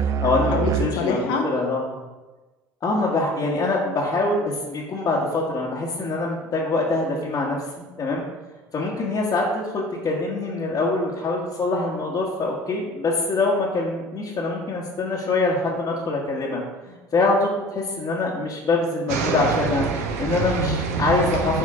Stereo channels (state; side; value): normal; both; correlation 0.44